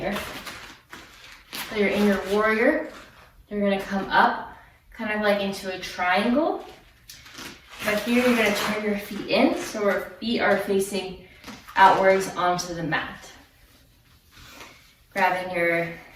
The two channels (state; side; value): identical; both; correlation 1.00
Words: So you're in your warrior. You're gonna come up, kind of like into a triangle. But here you're gonna turn your feet in, so our feet are facing outwards onto the mat. Grabbing your